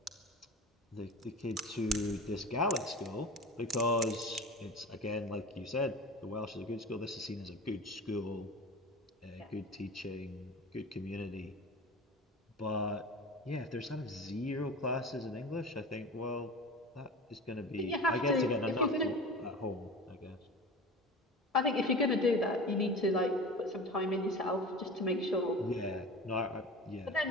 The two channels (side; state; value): both; normal; correlation 0.33